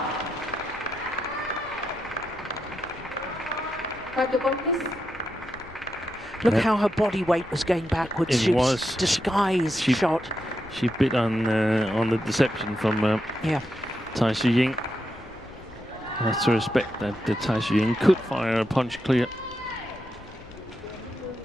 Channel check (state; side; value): noise; left; rumble, 20 dB below the sound